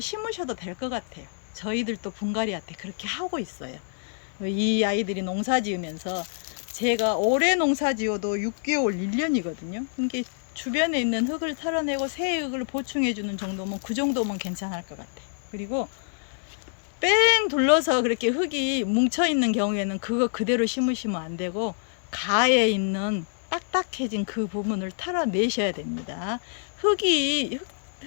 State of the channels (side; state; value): right; silent; digital silence